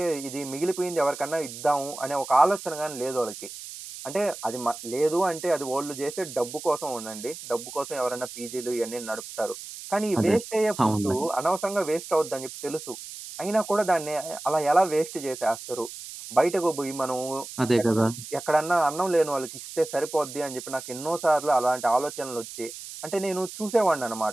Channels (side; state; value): right; noise; hiss, 12 dB below the sound